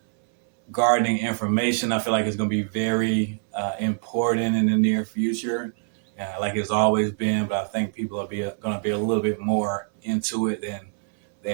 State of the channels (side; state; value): left; silent; 62 dB below the other